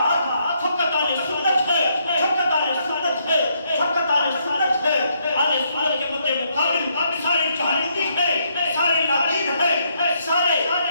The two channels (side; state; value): both; inverted; correlation -0.73